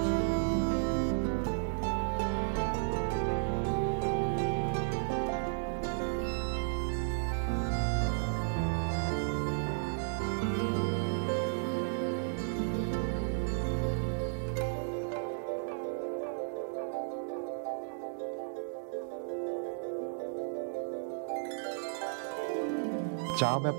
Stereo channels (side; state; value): left; silent; digital silence